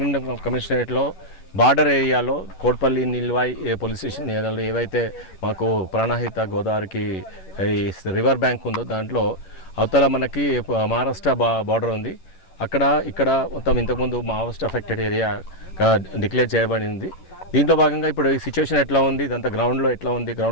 కమిషనరేట్లో బార్డర్ ఏరియాలో కోట్పల్లి నిల్వాయి పోలీస్ స్టేషన్ ఏరియాలో ఏవైతే మాకు ప్రాణహిత గోదావరికి రివర్ బ్యాంక్ ఉందో దాంట్లో అవతల మనకి మహారాష్ట్ర బార్డర్ ఉంది। ఇక్కడ మొత్తం ఇంతకుముందు మావోయిస్ట్ అఫెక్టెడ్ ఏరియా డిక్లేర్ చేయబడింది। దీంట్లో భాగంగా ఇప్పుడు ఈ సిచ్యువేషన్ ఎట్లా ఉంది, ఇదంతా గ్రౌండ్లో ఎట్లా ఉంది,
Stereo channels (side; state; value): right; late; 11 ms